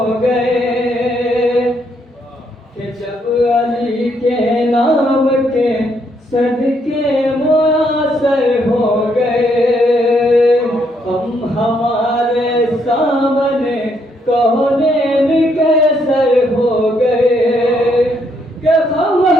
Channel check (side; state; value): both; normal; correlation 0.73